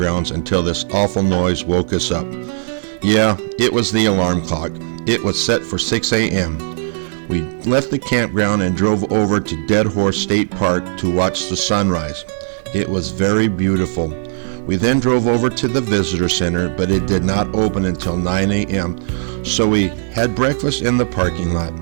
until this awful noise woke us up. Yeah, it was the alarm clock. It was set for 6 a.m. We left the campground and drove over to Dead Horse State Park to watch the sunrise. It was very beautiful. We then drove over to the visitor center, but it did not open until 9 a.m., so we had breakfast in the parking lot.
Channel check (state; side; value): silent; left; digital silence